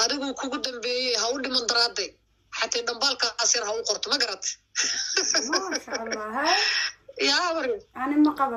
adigu kugu dambeeyey ha u dhiman daraaday حتى دنبالك أصير هاو قرط ما قرأت. ما شاء الله هاي. يا وري. أنا ما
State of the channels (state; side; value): identical; both; correlation 1.00